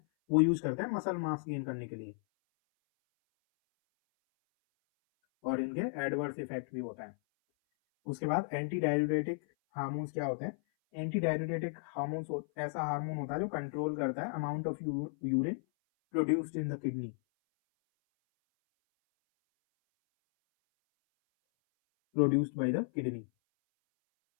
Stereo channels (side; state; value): right; silent; 55 dB below the other